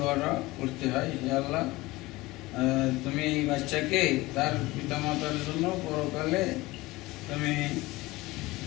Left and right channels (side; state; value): right; quieter; 20.2 dB